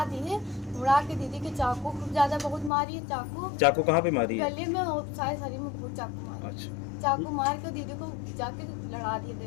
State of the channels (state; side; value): drops out; right; at 2.7 s